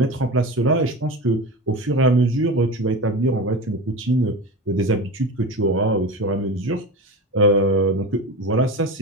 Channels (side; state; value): both; normal; correlation 0.27